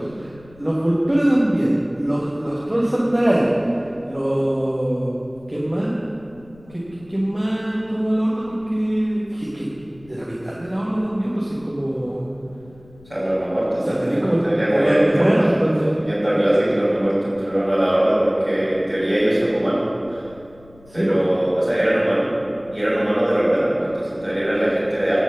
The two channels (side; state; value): left; noise; rumble, 25 dB below the sound